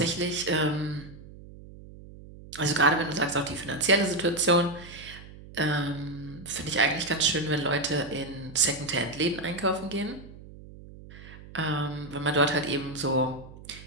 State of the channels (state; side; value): noise; right; hum, 17 dB below the sound